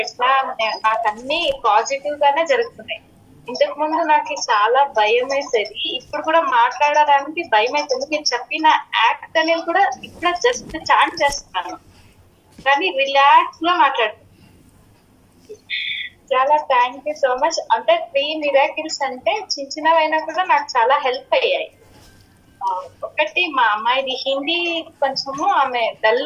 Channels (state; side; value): identical; both; correlation 1.00